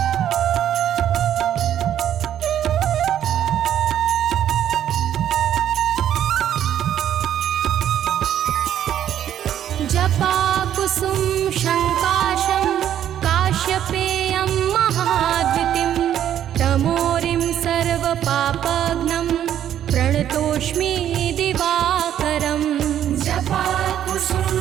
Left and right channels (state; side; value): quieter; left; 10.6 dB